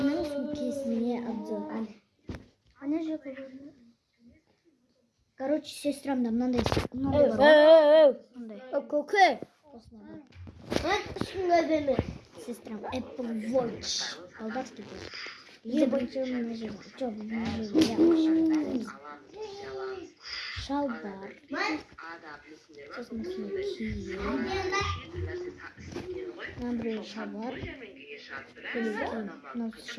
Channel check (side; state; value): both; identical; correlation 1.00